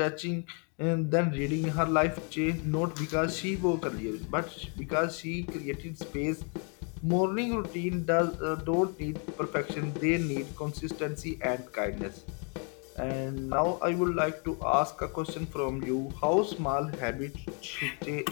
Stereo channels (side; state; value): right; quieter; 37.8 dB